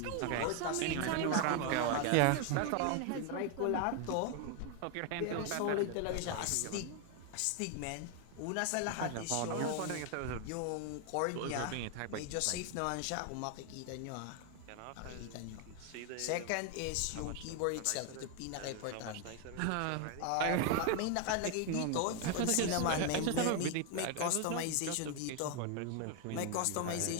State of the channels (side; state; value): both; different; correlation 0.01